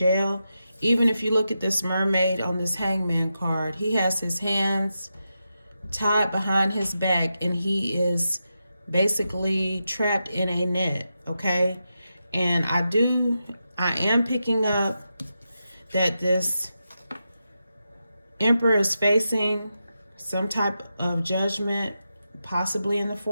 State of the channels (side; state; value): both; inverted; correlation -0.88